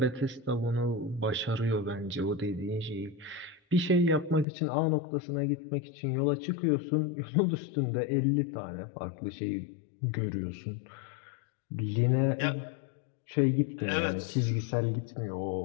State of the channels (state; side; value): drops out; right; at 4.5 s